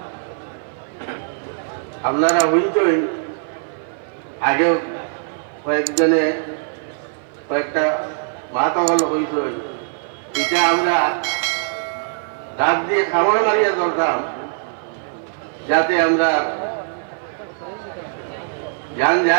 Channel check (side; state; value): left; silent; 56 dB below the other